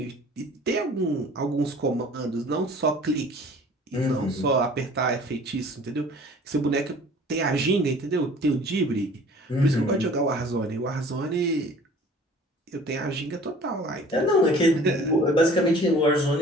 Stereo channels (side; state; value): both; normal; correlation 0.48